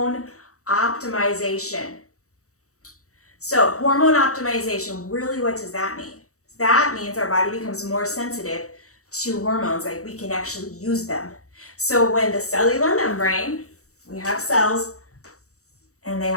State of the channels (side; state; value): right; late; 0.65 ms